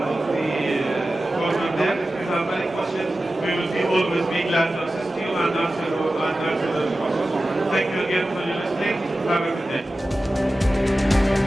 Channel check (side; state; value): both; normal; correlation 0.95